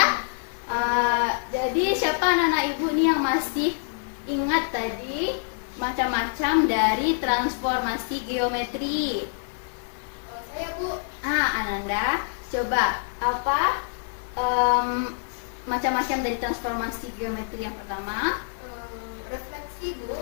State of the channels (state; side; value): silent; right; digital silence